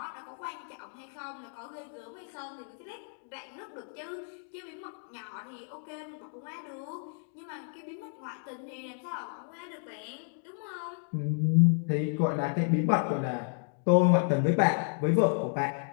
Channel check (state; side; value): silent; right; 57 dB below the other